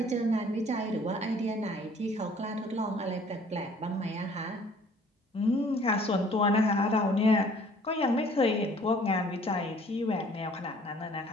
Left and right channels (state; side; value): normal; both; correlation 0.55